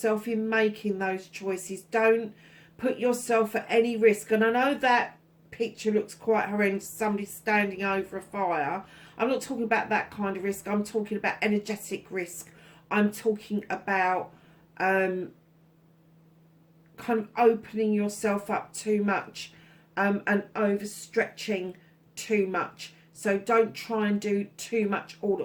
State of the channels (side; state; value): both; identical; correlation 1.00